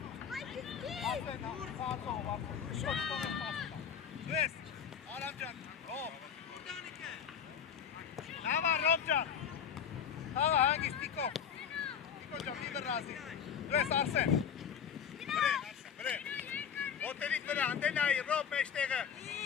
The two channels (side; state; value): right; quieter; 7.7 dB